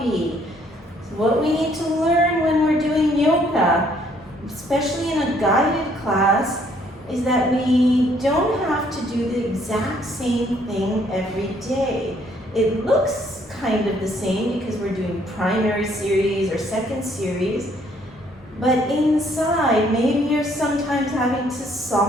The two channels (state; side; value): normal; both; correlation 0.65